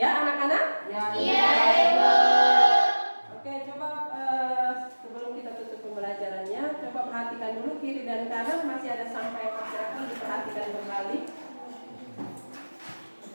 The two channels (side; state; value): both; inverted; correlation -1.00